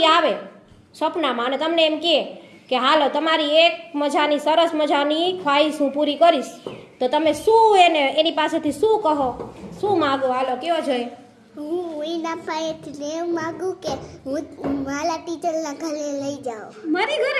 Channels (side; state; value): both; identical; correlation 1.00